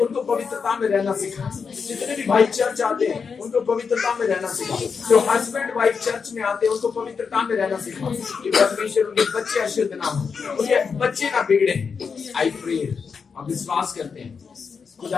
पवित्रता में रहना सिखा, जितने भी भाई चर्च आते हैं उनको पवित्रता में रहना सिखा, जो हस्बैंड वाइफ चर्च में आते हैं उनको पवित्रता में रहना सिखा, कि परमेश्वर उनके बच्चे अशुद्ध ना हो, उनके बच्चे ना बिगड़े। आई प्रे, हम विश्वास करते हैं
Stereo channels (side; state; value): right; quieter; 5.7 dB